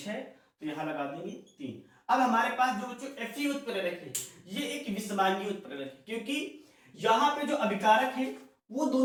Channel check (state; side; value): identical; both; correlation 1.00